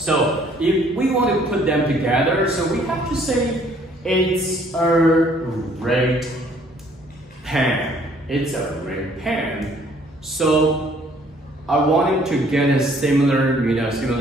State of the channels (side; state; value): both; normal; correlation 0.61